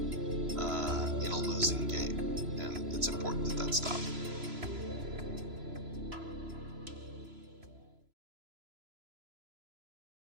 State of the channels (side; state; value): left; late; 3.0 ms